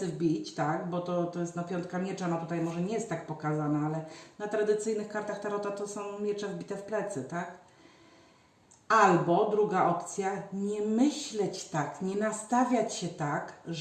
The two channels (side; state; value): both; identical; correlation 1.00